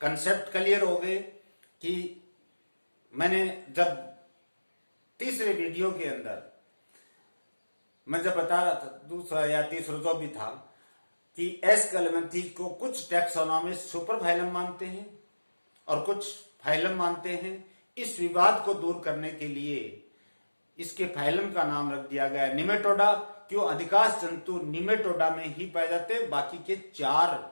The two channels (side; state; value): both; inverted; correlation -1.00